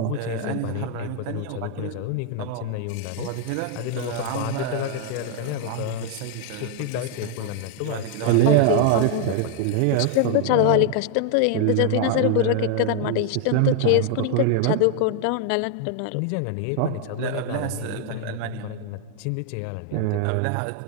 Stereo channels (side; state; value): both; different; correlation 0.00